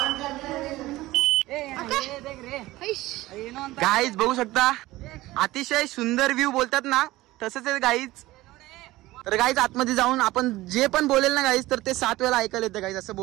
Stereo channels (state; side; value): quieter; left; 17.9 dB